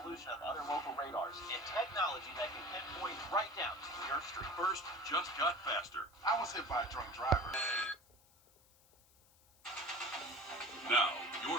of other local radars and technology that can pinpoint right down to your street. First just got faster. I was hit by a drunk driver. Now,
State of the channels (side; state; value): left; noise; hiss, 28 dB below the sound